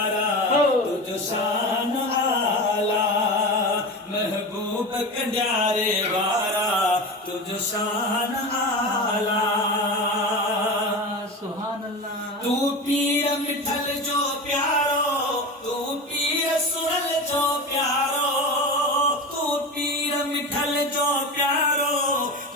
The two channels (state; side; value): normal; both; correlation 0.26